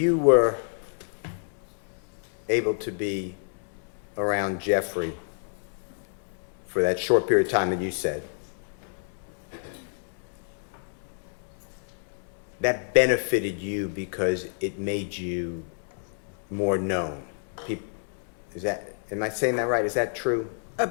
were able to be around Jeffrey for that short period of time that you said, that benefited you because it made you more known. Am I saying that right? Is that true?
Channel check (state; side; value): silent; right; 59 dB below the other